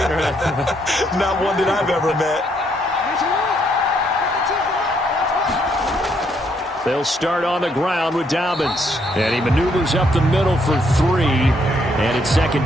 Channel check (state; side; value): normal; both; correlation 0.72